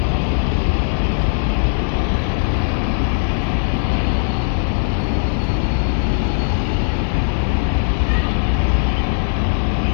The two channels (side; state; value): right; silent; 62 dB below the other